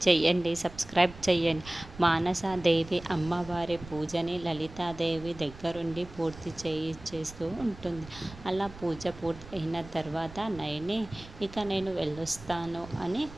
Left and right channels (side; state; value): right; noise; rumble, 17 dB below the sound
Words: చేయండి, సబ్స్క్రైబ్ చేయండి. మానసాదేవి అమ్మవారి పూజని లలితాదేవి దగ్గరుండి పూర్తి చేస్తూ ఉంటుంది. అలా పూజ పూర్తి అయిన తర్వాత నయని ఇక నేను వెళ్ళొస్తాను అని